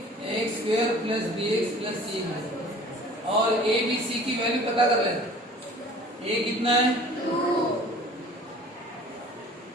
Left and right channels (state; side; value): normal; both; correlation 0.47